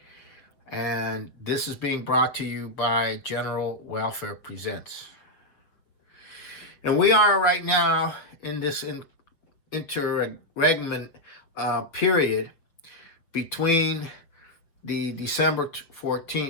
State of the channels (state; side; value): late; right; 6.8 ms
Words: and this is being brought to you by General Welfare Presents. And we are right now in this interregnum period between the December